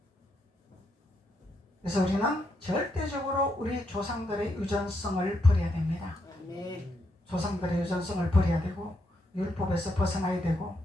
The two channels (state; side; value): normal; both; correlation 0.79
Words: 그래서 우리는 절대적으로 우리 조상들의 유전성을 버려야 됩니다. 아멘. 조상들의 유전성을 버려야 되고 율법에서 벗어나야 되고